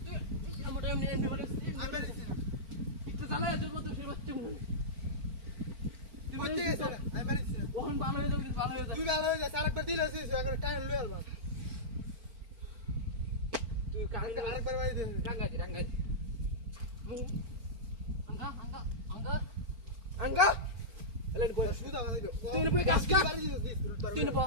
তুই আমার এমনি বাড়ি আমি বাড়ি দিছি একটু জ্বালা তোর মত সে বাচ্চা মনে তুই কই থেকে গেছে আমি বাড়ি দিছি ওখান ভালো হয়ে যাবে তুই ভালো হয়ে যা আরেকবার দিলে আছে আরেকবার টাইম লই আলবা তুই আরেকবার বাড়ি দে রাঙ্গাজি আঙ্গা এলেন কই সুদা বাড়ি দে তুই বই কাজ কা তুই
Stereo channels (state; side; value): late; left; 4.4 ms